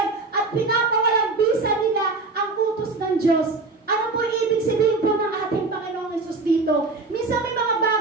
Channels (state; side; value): quieter; left; 3.7 dB